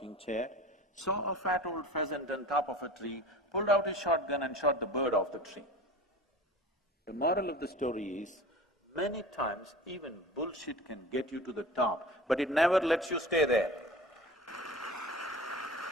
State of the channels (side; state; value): both; normal; correlation 0.38